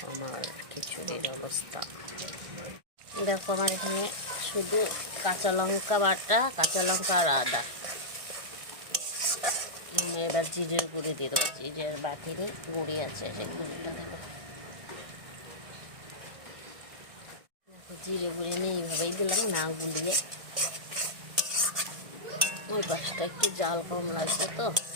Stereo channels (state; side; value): late; left; 1.6 ms